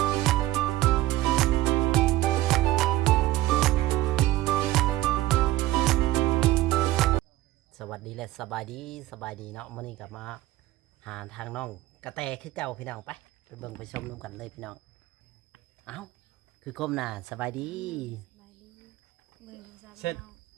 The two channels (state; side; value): quieter; left; 16.2 dB